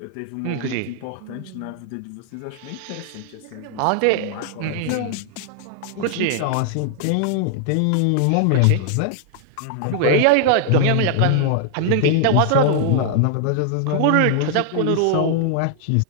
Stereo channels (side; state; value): both; different; correlation 0.00